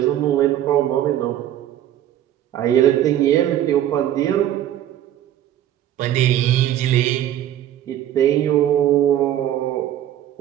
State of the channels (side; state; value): left; quieter; 11.8 dB